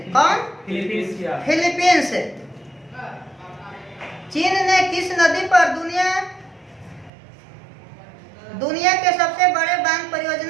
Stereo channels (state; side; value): drops out; left; at 7.1 s